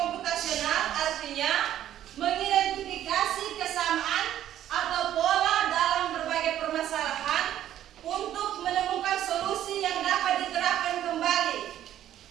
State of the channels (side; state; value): left; quieter; 11.8 dB